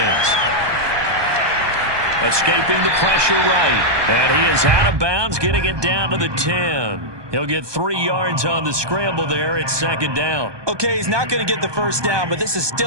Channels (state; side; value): late; left; 1.2 ms